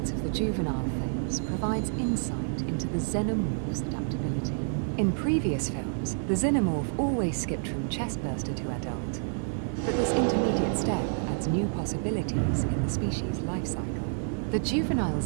of the juvenile phase provides insight into the xenomorph's adaptability. In previous films, the xenomorph always skipped from chestburster to adult, but this intermediate step adds new possibilities in the species' life cycle. The juvenile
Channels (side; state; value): left; silent; digital silence